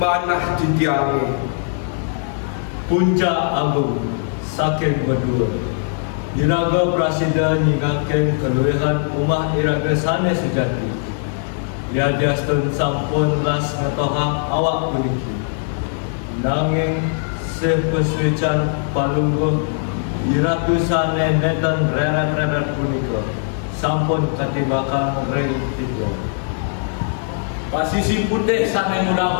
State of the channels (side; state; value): right; silent; 66 dB below the other